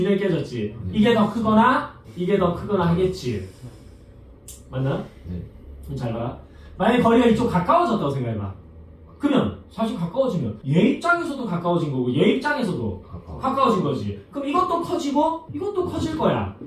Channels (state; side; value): identical; both; correlation 1.00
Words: 깨졌지. 이게 더 크거나 이게 더 크거나 하겠지. 맞나요? 네. 좀 잘 봐라. 만약에 거리가 이쪽 가까워졌다고 생각해봐. 그러면 사실 가까워지면 얘 입장에서도 가까워진 거고 얘 입장에서도 가까워진 거지. 그럼 이것도 커지고 이것도 커질 거야.